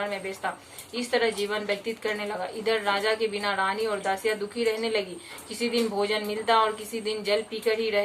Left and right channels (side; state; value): both; identical; correlation 1.00